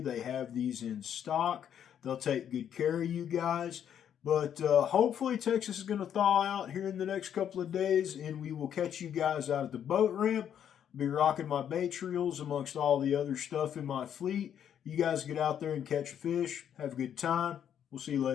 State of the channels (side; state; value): right; quieter; 9.2 dB